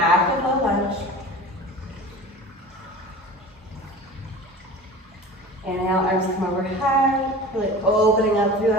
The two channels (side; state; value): both; normal; correlation 0.38